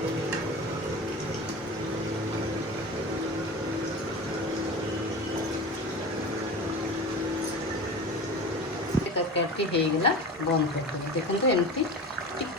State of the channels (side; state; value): both; normal; correlation 0.31